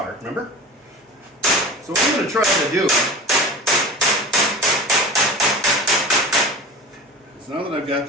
remember? So what I'm going to try to do is, now that I've got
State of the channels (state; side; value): normal; both; correlation 0.34